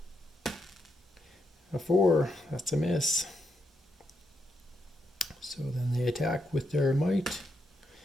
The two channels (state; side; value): normal; both; correlation 0.81